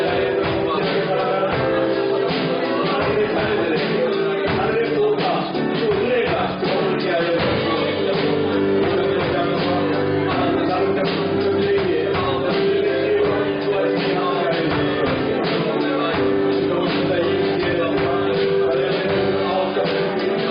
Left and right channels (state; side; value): identical; both; correlation 1.00